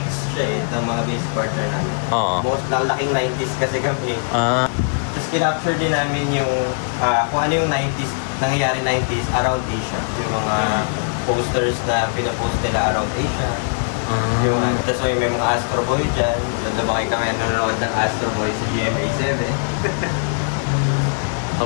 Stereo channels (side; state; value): right; silent; digital silence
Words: siya ng mga base partner namin. Oo. Most laking 90s kasi kami. Tapos kinapture din namin yung kung ano yung 90s, nangyayari 90s around Asia. Yung mga posters na pinapost nila around Asia. That's why may mga Astro Boy dyan. Lumaki kami nanonood ng Astro Boy sa GMA7.